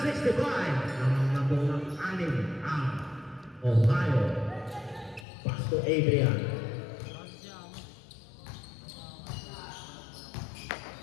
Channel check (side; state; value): right; drops out; at 5.2 s